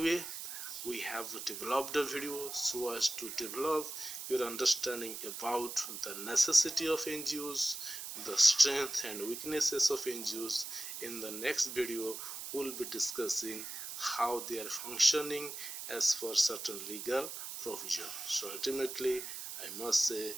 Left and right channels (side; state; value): right; noise; hiss, 7 dB below the sound